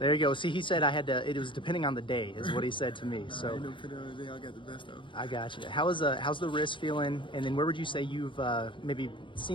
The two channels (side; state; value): right; late; 0.24 ms